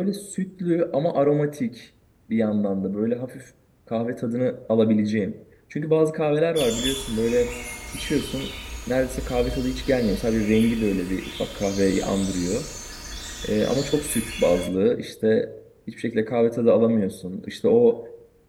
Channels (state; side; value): identical; both; correlation 1.00